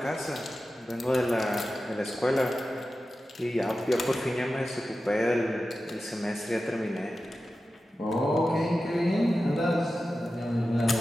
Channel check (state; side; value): normal; both; correlation 0.93